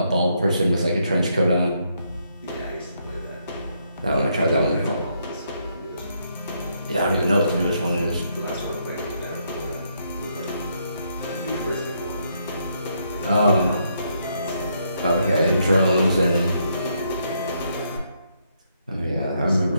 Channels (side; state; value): both; inverted; correlation -0.75